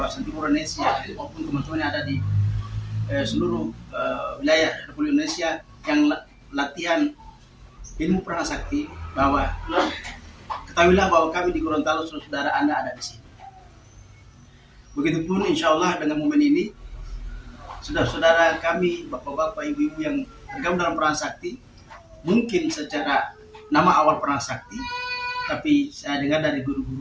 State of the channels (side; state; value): both; identical; correlation 1.00